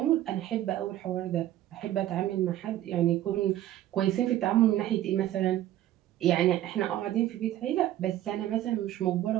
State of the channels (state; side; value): quieter; left; 13.3 dB